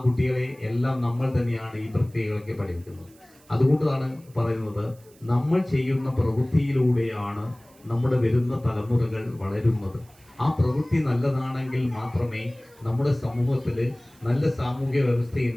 കുട്ടികളെ എല്ലാം നമ്മൾ തന്നെയാണ് ഈ പ്രക്രിയകളൊക്കെ പഠിപ്പിക്കുന്നത്. അതുകൊണ്ടാണ് പറയുന്നത്, നമ്മൾ ചെയ്യുന്ന പ്രവൃത്തിയിലൂടെയാണ് നമ്മുടെ വരുന്ന തലമുറകൾ വളരുന്നത്. ആ പ്രവൃത്തി നല്ലതാണെങ്കിൽ മാത്രമേ നമ്മുടെ സമൂഹത്തിൽ നല്ല സാമൂഹ്യ വ്യവസ്ഥ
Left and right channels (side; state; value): right; noise; hiss, 28 dB below the sound